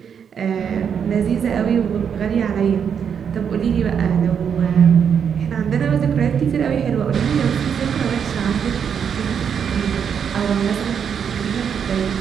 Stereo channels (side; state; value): left; quieter; 7.5 dB